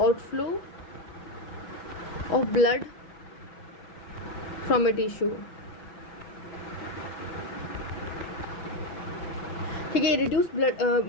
of blood from a tissue. ठीक है. रिड्यूस ब्लड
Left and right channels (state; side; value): late; right; 6.2 ms